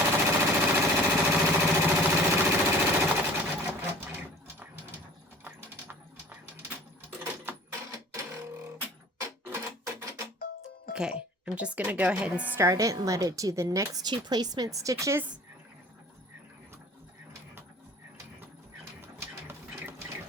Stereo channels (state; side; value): normal; both; correlation 0.46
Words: Okay, I'm just going to go ahead and start it and let it do the next 2 placement stitches.